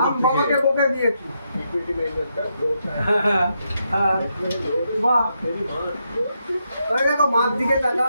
আমি বাবাকে থেকে। বকে দিয়েছি। বাহ, ওই দেখো মাছ দিকে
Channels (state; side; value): inverted; both; correlation -0.81